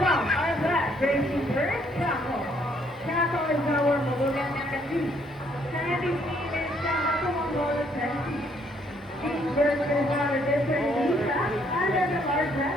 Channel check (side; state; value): both; normal; correlation 0.68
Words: our black racing first Chaco. Chaco is our Molugan Nakati. Sandy's name is Chaco Mongola Sandy. Each version is on a different visa under the large